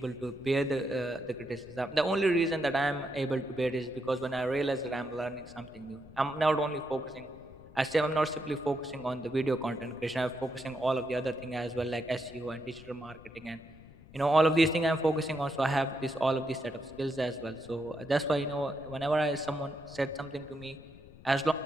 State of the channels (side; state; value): left; noise; rumble, 21 dB below the sound